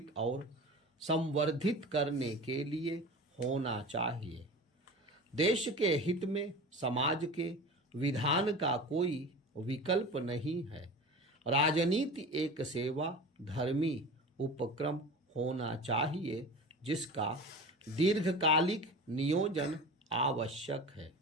और संवर्धित करने के लिए होना चाहिए। देश के हित में समाज के विधान का कोई विकल्प नहीं है। राजनीति एक सेवा धर्मी उपक्रम होना चाहिए जिसका दीर्घकालिक नियोजन आवश्यक है।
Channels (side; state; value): both; normal; correlation 0.34